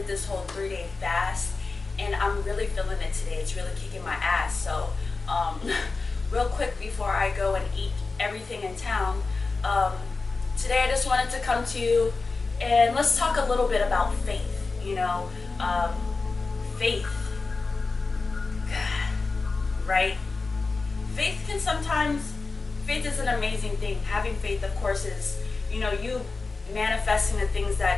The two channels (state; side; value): quieter; right; 4.0 dB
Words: this whole 3-day fast, and I'm really feeling it today. It's really kicking my ass. So, real quick before I go and eat everything in town, today I just wanted to come to you and let's talk a little bit about faith. Faith, right? Faith is an amazing thing. Having faith, of course, is, you manifesting the things